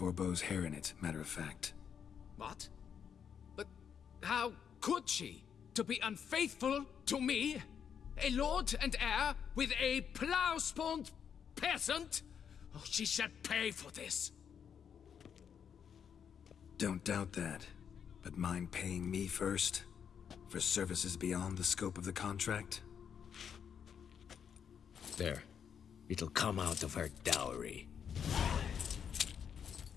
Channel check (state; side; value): quieter; right; 7.7 dB